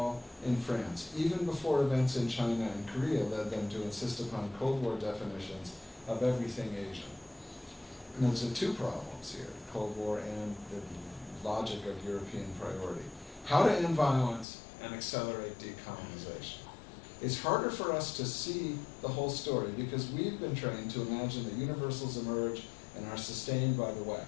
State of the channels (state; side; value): drops out; right; at 14.5 s